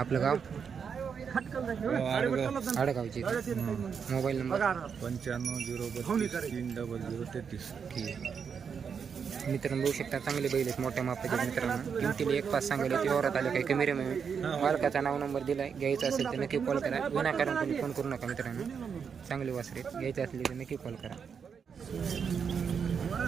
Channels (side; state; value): left; quieter; 6.6 dB